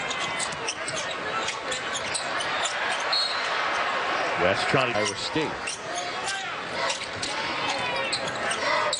West trying to Iowa State.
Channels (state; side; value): identical; both; correlation 1.00